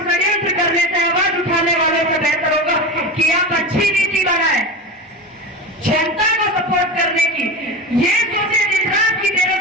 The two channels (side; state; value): both; normal; correlation 0.25